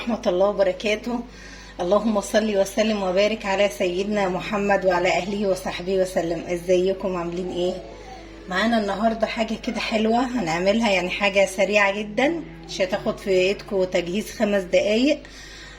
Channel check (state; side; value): identical; both; correlation 1.00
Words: الله وبركاته. اللهم صل وسلم وبارك على سيدنا محمد وعلى أهله وصحبه وسلم. ازيكم عاملين ايه؟ معانا النهاردة حاجة كده حلوة هنعملها، يعني حاجة سريعة جدا، مش هتاخد في ايدكم تجهيز 5 دقايق.